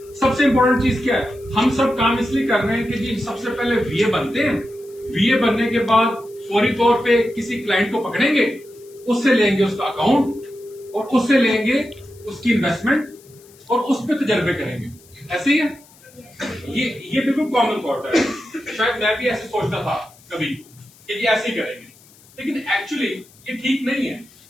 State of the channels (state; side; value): noise; left; hiss, 26 dB below the sound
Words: सबसे इंपॉर्टेंट चीज क्या है? हम सब काम इसलिए कर रहे हैं कि जी सबसे पहले वीए बनते हैं, वीए बनने के बाद फौरी तौर पे किसी क्लाइंट को पकड़ेंगे, उससे लेंगे उसका अकाउंट और उससे लेंगे उसकी इन्वेस्टमेंट और उस पर तजर्बे करेंगे। ऐसे ही है, ये बिल्कुल कॉमन थॉट है। शायद मैं भी ऐसे सोचता था कभी कि ये ऐसे ही करेंगे, लेकिन एक्चुअली ये ठीक नहीं है।